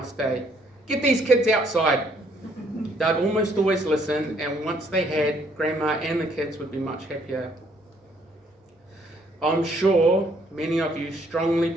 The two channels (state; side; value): normal; both; correlation 0.66